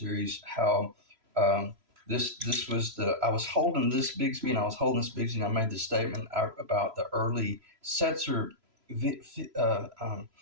how um, this was I was holding this Bigsby, and I was holding this Bigsby, and I made this statement about the early Setzer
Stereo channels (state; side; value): late; left; 3.0 ms